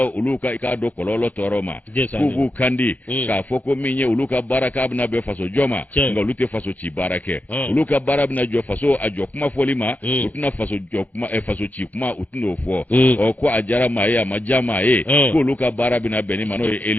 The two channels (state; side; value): late; right; 0.080 ms